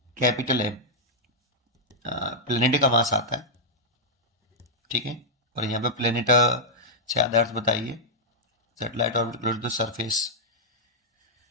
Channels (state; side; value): normal; both; correlation -0.07